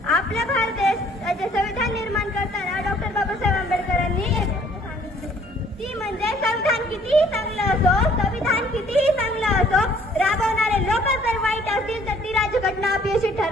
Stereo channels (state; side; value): normal; both; correlation 0.59